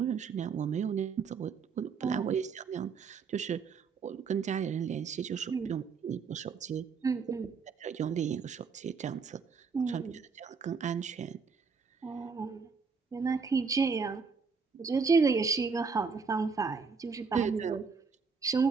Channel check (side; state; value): left; quieter; 5.3 dB